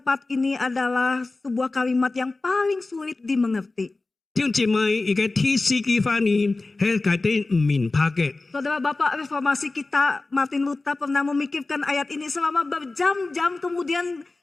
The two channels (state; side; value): quieter; right; 3.4 dB